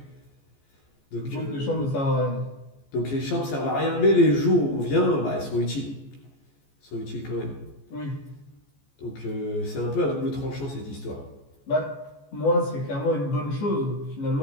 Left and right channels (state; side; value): late; right; 14 ms